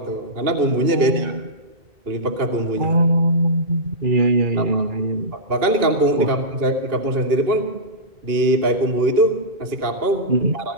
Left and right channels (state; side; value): late; left; 2.7 ms